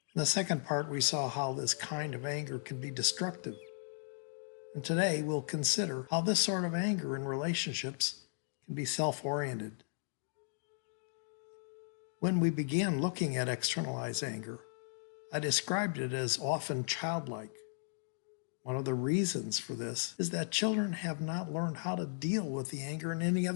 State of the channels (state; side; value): silent; right; digital silence